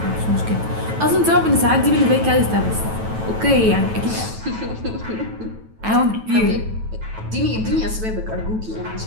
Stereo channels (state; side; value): late; left; 9.2 ms